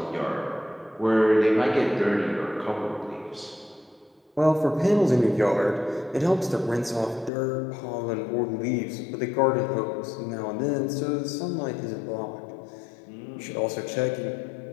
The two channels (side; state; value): right; drops out; at 7.3 s